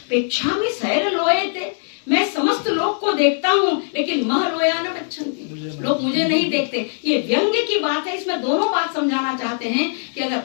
पेक्षा में सैर लोए थे, मैं समस्त लोग को देखता हूँ लेकिन मह लोया न पच्छन्ति, लोग मुझे नहीं देखते। ये व्यंग्य की बात है, इसमें दोनों बात समझाना चाहते हैं कि अगर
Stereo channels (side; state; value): right; silent; digital silence